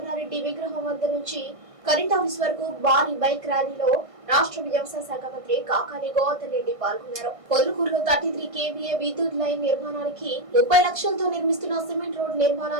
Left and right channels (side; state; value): left; late; 1.6 ms